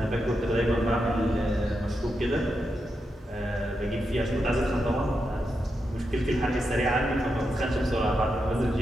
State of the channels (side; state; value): both; normal; correlation 0.86